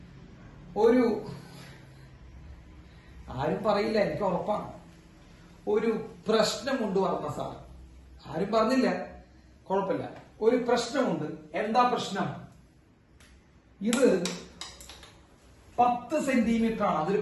ഒരു ആരും പറയില്ല, എനിക്ക് ഉറപ്പാണ്. ഒരു പ്രശ്നമുണ്ട് പറഞ്ഞ സാർ. ആരും പറഞ്ഞില്ല, കുഴപ്പമില്ല. ഒരു പ്രശ്നമുണ്ട്. എന്താ പ്രശ്നം? ഇത് 10 സെന്റിമീറ്റർ ആണ്. അതൊരു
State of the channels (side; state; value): both; identical; correlation 1.00